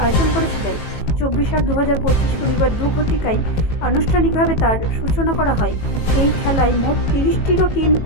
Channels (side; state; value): right; late; 18 ms